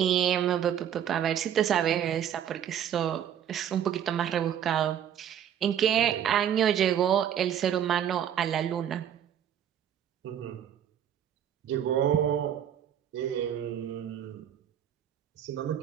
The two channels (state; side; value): quieter; left; 9.6 dB